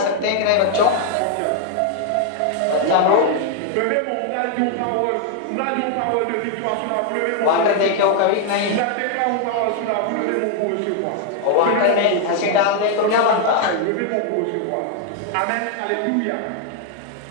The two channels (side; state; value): both; different; correlation 0.00